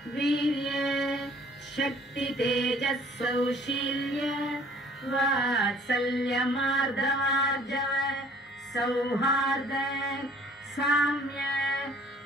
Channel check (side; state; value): both; normal; correlation 0.55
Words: वीर्य शक्ति तेजः सौशील्य वात्सल्य मार्दवार्जव सौहार्द साम्य